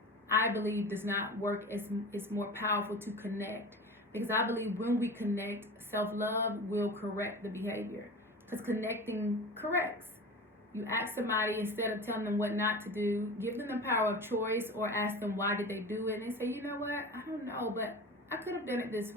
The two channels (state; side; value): normal; both; correlation 0.33